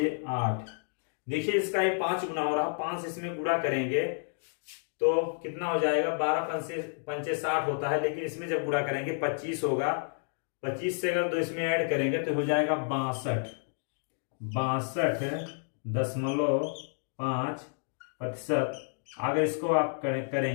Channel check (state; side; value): silent; right; 58 dB below the other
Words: देखिए इसका ये 5 गुना हो रहा, 5 इसमें गुणा करेंगे तो कितना हो जाएगा, 12 पंचे 60 होता है, लेकिन इसमें जब गुणा करेंगे 25 होगा, 25 से अगर 2 इसमें ऐड करेंगे तो हो जाएगा 62.5%। अगर इसको आप